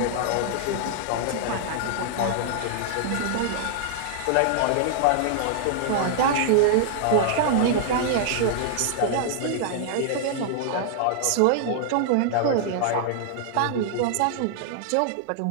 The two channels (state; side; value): different; both; correlation -0.01